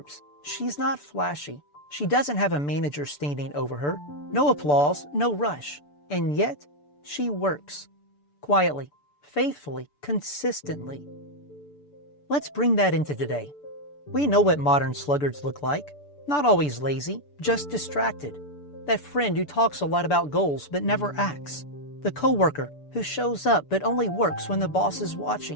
she's not flashy. She doesn't have a manager standing over her, no applause, no rush, and yet she works quietly, faithfully, consistently. Let's bring that into today. We know what modern sluggards look like. Not always lazy, just distracted. That friend who talks a lot about goals but never acts. The coworker who shows up but only works when the boss is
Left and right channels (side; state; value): right; late; 6.9 ms